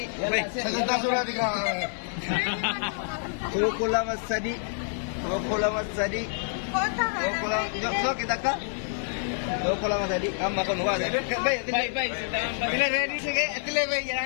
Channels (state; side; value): silent; right; 60 dB below the other